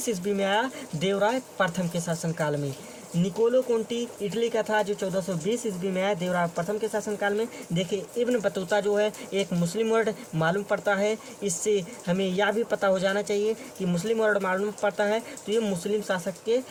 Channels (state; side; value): identical; both; correlation 1.00